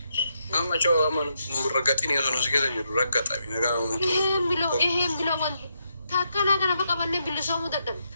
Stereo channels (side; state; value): both; inverted; correlation -0.81